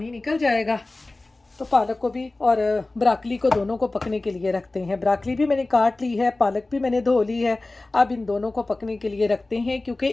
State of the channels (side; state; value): right; quieter; 3.0 dB